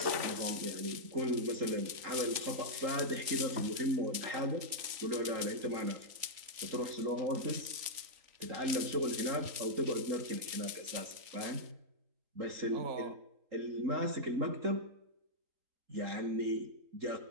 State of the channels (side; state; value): left; late; 3.8 ms